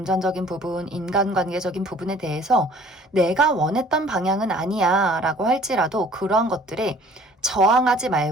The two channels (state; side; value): normal; both; correlation 0.53